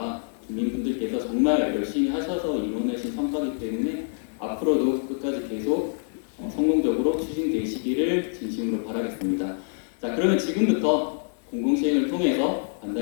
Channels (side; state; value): right; silent; 56 dB below the other